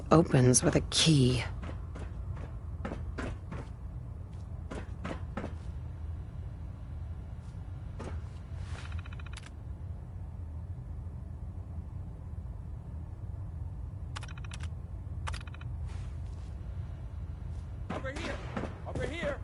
opens with a key. Over here! Over here!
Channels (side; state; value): both; identical; correlation 1.00